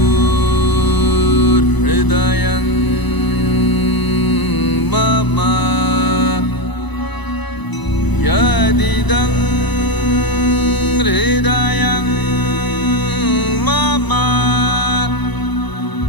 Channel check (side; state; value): right; late; 1.0 ms